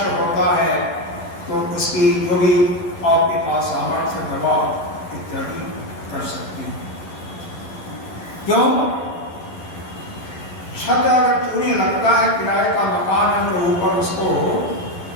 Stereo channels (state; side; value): late; right; 12 ms